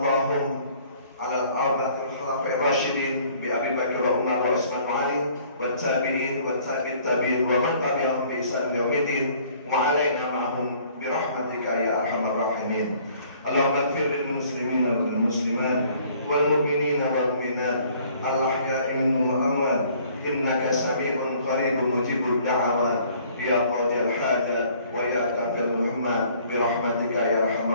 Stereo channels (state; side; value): inverted; both; correlation -0.57